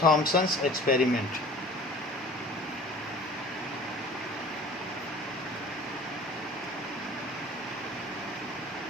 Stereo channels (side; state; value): both; normal; correlation 0.46